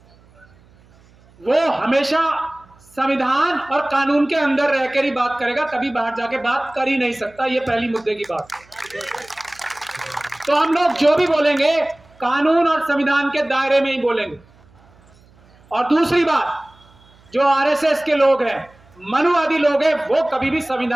वो हमेशा संविधान और कानून के अंदर रहकर ही बात करेगा, कभी बाहर जाके बात कर ही नहीं सकता। ये पहली मुद्दे की बात। तो हम लोग जो भी बोलेंगे कानून और संविधान के दायरे में ही बोलेंगे। और दूसरी बात, जो आरएसएस के लोग हैं, मनुवादी लोग हैं, वो कभी भी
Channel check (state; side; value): noise; right; hum, 29 dB below the sound